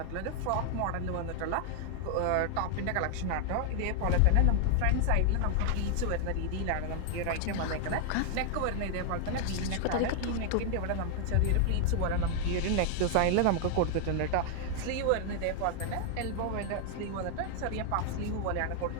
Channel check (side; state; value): both; different; correlation 0.00